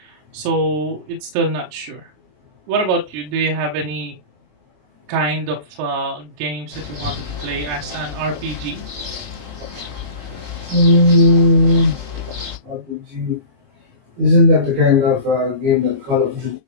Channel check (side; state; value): left; late; 27 ms